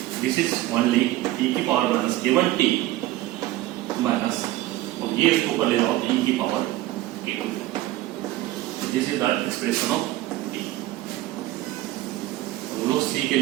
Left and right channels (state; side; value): quieter; left; 16.3 dB